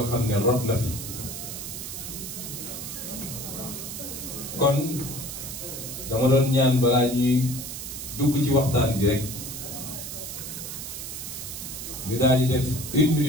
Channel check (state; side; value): noise; right; hiss, 7 dB below the sound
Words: xam ne rot na fi. kon dama doon ñaan balaa ñuy dugg ci waxtaan bi rek ñu daal di def 1